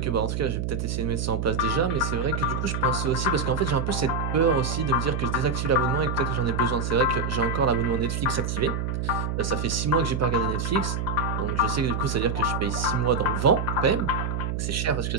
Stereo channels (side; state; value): right; noise; hum, 1 dB below the sound